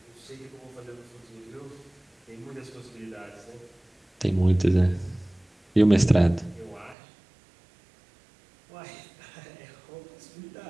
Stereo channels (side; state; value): left; drops out; at 7.0 s